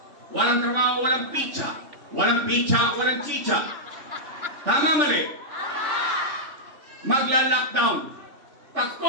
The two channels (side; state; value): left; late; 3.5 ms